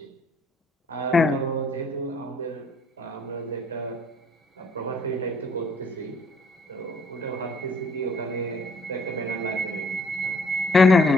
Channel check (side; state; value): both; normal; correlation 0.63